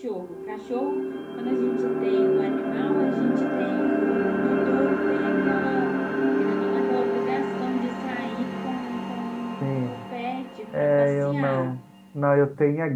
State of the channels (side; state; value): both; identical; correlation 1.00